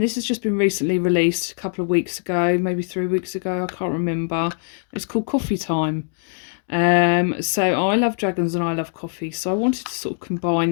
this has just been recently released a couple of weeks ago, maybe 3 weeks ago, I can't remember. It's called Coffee Time. So I love dragons and I love coffee, so I wanted to sort of combine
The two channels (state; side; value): silent; right; digital silence